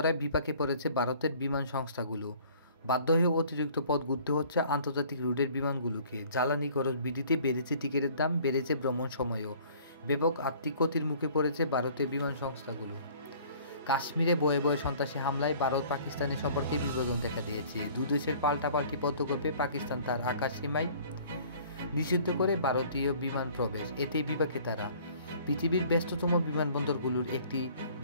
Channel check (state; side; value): inverted; both; correlation -0.52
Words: বিপাকে পড়েছে ভারতের বিমান সংস্থাগুলো। বাধ্য হয়ে অতিরিক্ত পথ ঘুরতে হচ্ছে আন্তর্জাতিক রুটের বিমানগুলোকে। জ্বালানি খরচ বৃদ্ধিতে বেড়েছে টিকিটের দাম, বেড়েছে ভ্রমণ সময়ও। ব্যাপক আর্থিক ক্ষতির মুখে পড়েছে ভারতের বিমান সংস্থাগুলো। কাশ্মীরে বয়ে বয়ে সন্ত্রাসী হামলায় ভারত পাকিস্তানের সম্পর্কে বিভাজন দেখা দিয়েছে। দুদেশের পাল্টাপাল্টি পদক্ষেপে পাকিস্তান তার আকাশসীমায় নিষিদ্ধ করে ভারতীয় বিমান প্রবেশ। এতেই বিপাকে তারা। পৃথিবীর ব্যস্ততম বিমানবন্দরগুলোর একটি